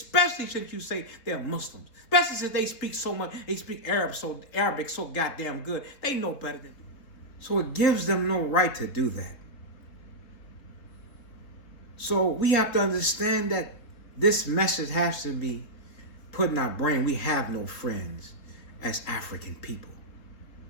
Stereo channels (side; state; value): right; late; 3.9 ms